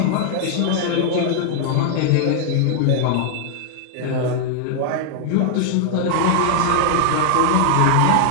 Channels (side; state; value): both; different; correlation 0.00